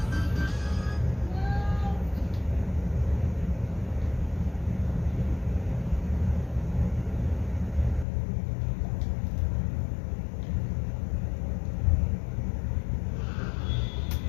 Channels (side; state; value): right; drops out; at 8.1 s